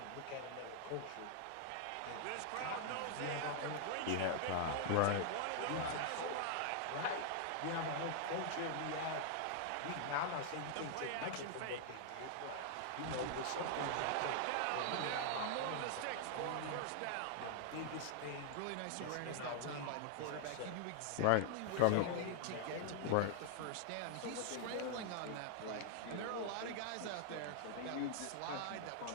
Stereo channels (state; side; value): different; both; correlation 0.00